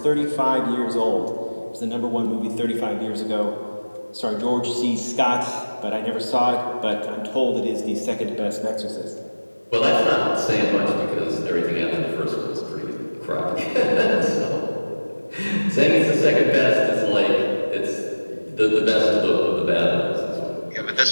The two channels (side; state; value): both; inverted; correlation -1.00